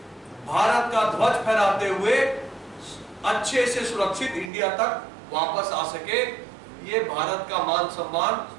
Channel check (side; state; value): left; drops out; at 4.5 s